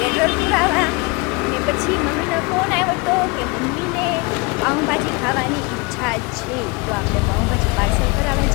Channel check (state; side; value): quieter; right; 27.2 dB